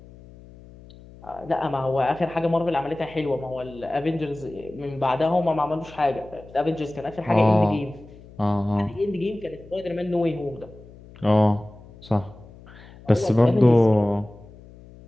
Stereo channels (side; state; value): left; noise; hum, 21 dB below the sound